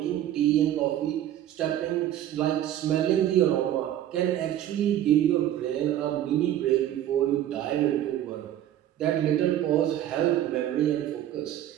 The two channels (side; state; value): left; quieter; 12.0 dB